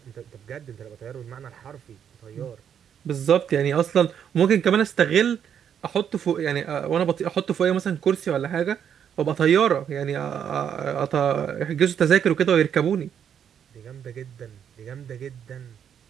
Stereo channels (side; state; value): left; quieter; 8.5 dB